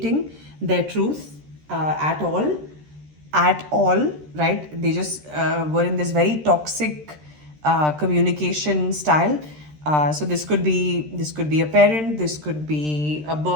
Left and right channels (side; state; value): left; late; 13 ms